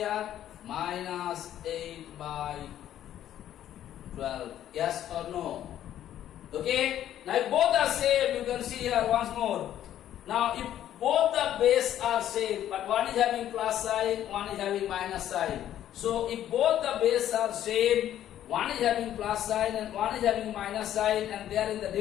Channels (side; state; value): right; quieter; 11.5 dB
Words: Minus 8 by 12. Yes or no? Okay, now if both are same, you can see here once more. Now if both the base are same, but one is having plus sign, one is having minus sign. So if both the base are same, one is having plus sign and one is having minus sign, and they are in the